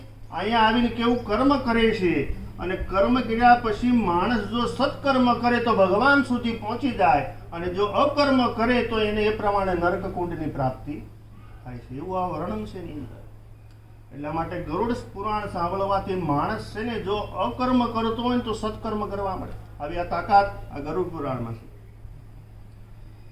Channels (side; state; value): both; identical; correlation 1.00